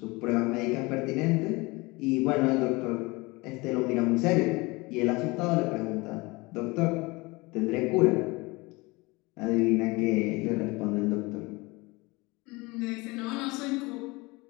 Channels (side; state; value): right; quieter; 24.2 dB